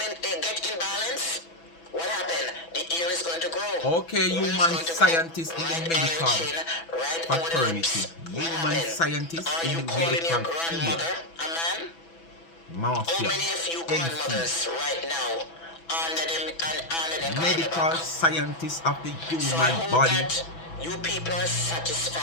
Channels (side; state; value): right; late; 6.0 ms